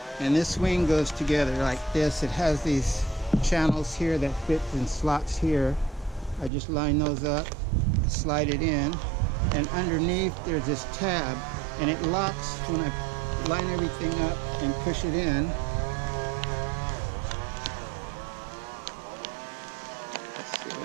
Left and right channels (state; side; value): drops out; left; at 6.5 s